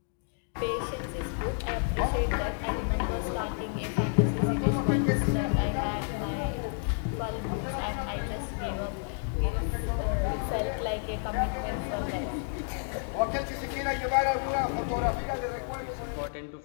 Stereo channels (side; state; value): right; silent; 58 dB below the other